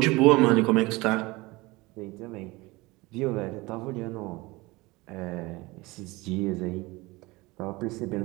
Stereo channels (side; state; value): left; quieter; 22.3 dB